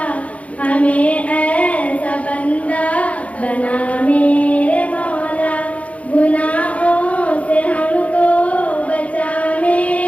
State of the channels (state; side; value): late; right; 0.066 ms